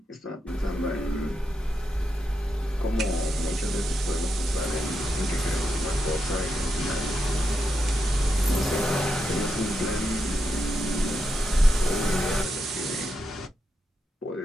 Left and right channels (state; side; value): normal; both; correlation 0.85